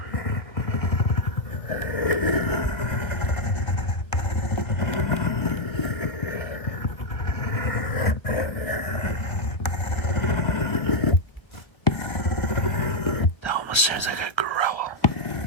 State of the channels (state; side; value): late; right; 1.2 ms